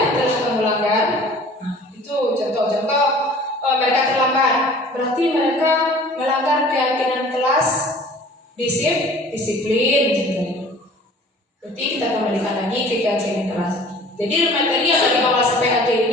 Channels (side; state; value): both; normal; correlation 0.48